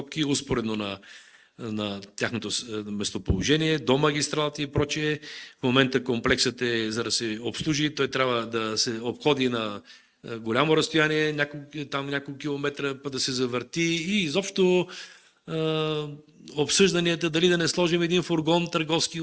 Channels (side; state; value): both; identical; correlation 1.00